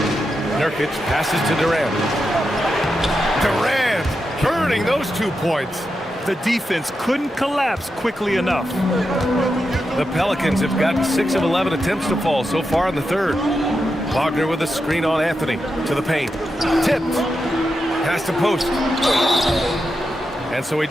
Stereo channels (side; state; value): both; normal; correlation 0.87